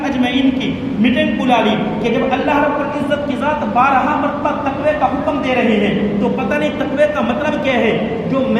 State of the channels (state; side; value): identical; both; correlation 1.00